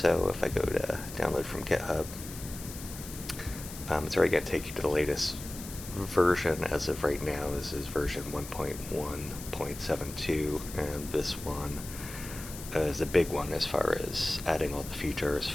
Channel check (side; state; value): left; noise; hiss, 12 dB below the sound